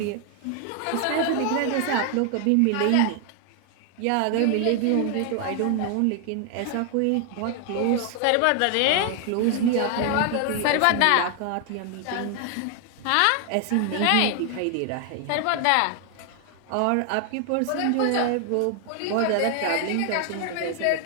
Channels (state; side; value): different; both; correlation 0.00